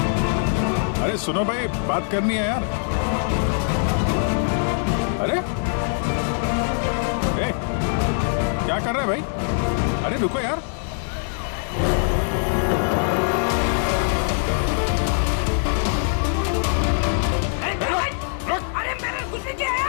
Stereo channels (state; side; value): silent; right; 64 dB below the other